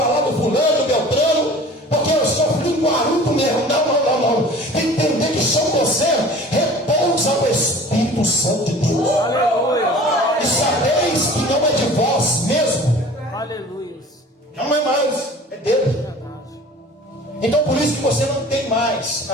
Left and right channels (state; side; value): normal; both; correlation 0.43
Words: do fulano, do Beltrano, porque eu sou linguarudo mesmo. Não. Tem que entender que sobre você repousa o Espírito Santo de Deus. Aleluia. E sabeis que não é de vós mesmo. Aleluia. Não é mais, é dele. Então por isso que você não tem mais,